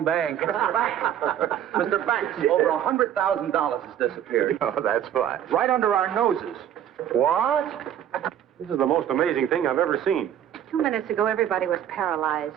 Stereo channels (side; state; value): left; quieter; 10.2 dB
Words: bank. Mr. Banks, over $100,000 has disappeared. Oh, that's fine. Right under our noses. What? This is the most amazing thing I've ever seen. 2 minutes ago, everybody was paralyzed.